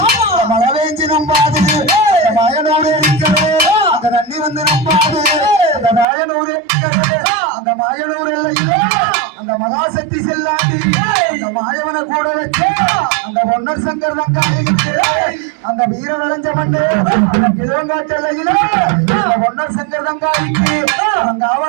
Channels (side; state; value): left; drops out; at 6.1 s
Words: மழை வேஞ்சி நம்பாது மாயனூர் ஏரிக்கிறது அந்த தண்ணி வந்து நம்பாது அந்த மாயனூர் அந்த மாயனூர் எல்லையிலே அந்த மகாசக்தி செல்லாண்டி அந்த மாயவனை கூட வச்சு அந்த பொன்னர் சங்கர் தங்காளிக்கு அந்த வீர விளைஞ்ச மண்ணு கிழங்காட்டு எல்லையில அந்த பொன்னர் சங்கர் தங்காளிக்கு அந்த